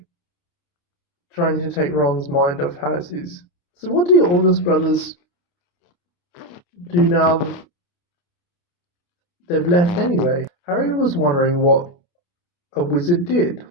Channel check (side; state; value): right; late; 29 ms